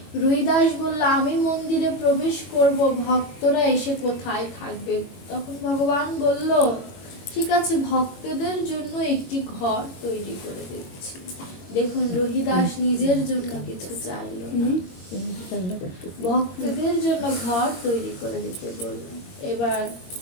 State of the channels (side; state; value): right; late; 22 ms